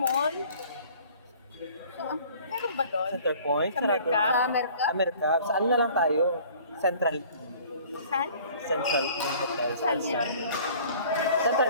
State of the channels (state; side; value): inverted; both; correlation -0.51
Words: So, meron ba doon? Center Point. Sa Mercab? Sa Mercab. Saan na lang tayo? Central. Saan? Central Hotel. Saan yun? Central